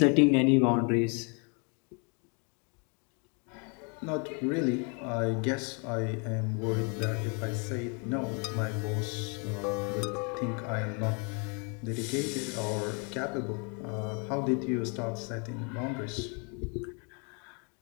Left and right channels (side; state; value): right; quieter; 35.9 dB